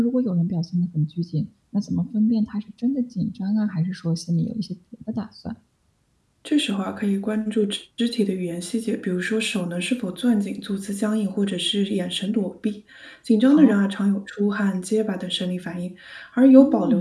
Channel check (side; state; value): both; identical; correlation 1.00